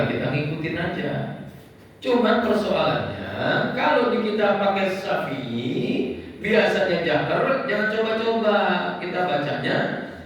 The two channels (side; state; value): both; identical; correlation 1.00